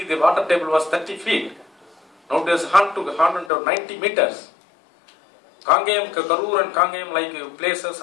the water table was 30 feet. Now it is 190 meters. Kangayam, Karur and Kangayam like places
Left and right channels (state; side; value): drops out; right; at 3.5 s